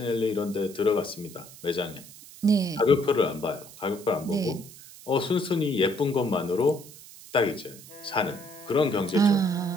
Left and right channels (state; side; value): noise; right; hiss, 18 dB below the sound